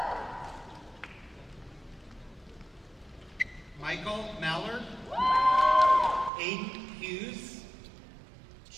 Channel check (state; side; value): drops out; left; at 6.3 s